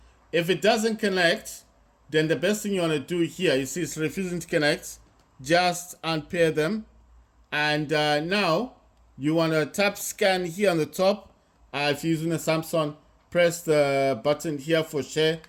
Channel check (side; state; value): both; identical; correlation 1.00